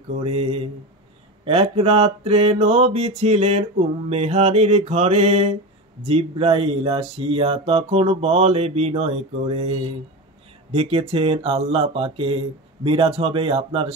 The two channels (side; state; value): both; normal; correlation 0.23